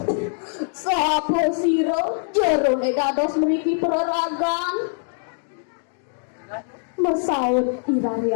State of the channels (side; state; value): right; silent; digital silence